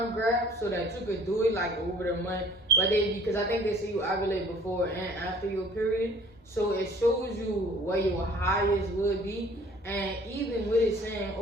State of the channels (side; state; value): both; normal; correlation 0.53